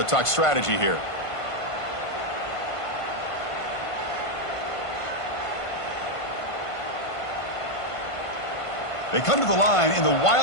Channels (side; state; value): right; late; 1.5 ms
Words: talk strategy here. They come to the line in the